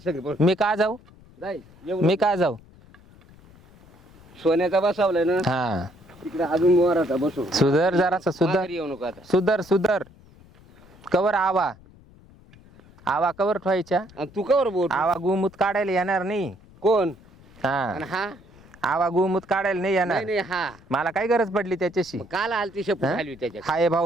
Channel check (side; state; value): left; noise; rumble, 24 dB below the sound